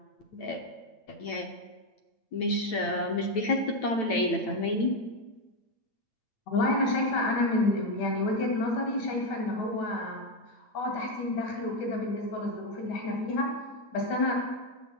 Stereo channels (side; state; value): right; late; 9.0 ms